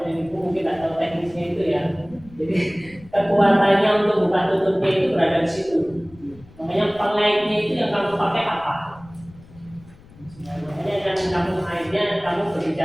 ini mungkin tak tahu teknisnya itu ya. Jadi kekuatannya untuk buka tutupnya itu berada di situ. Makanya pengaitnya itu yang kamu pakai apa? Makanya yang kamu akhirnya kamu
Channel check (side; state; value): left; noise; rumble, 23 dB below the sound